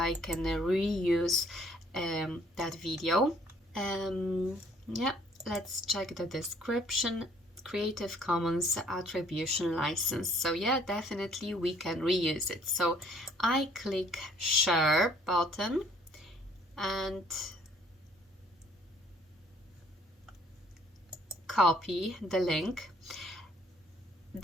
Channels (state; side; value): normal; both; correlation 0.61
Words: can reuse that video. Let's check the description. Creative Commons attribution license. So yeah, definitely we can reuse it. So I click share button and copy the link.